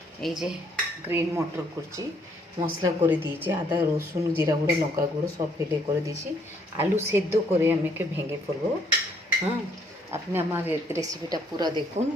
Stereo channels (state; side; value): normal; both; correlation 0.67